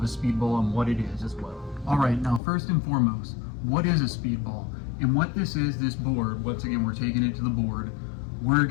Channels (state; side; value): drops out; right; at 2.4 s